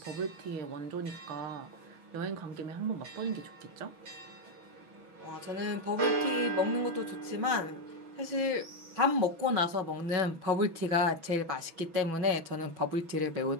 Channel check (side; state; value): left; late; 6.1 ms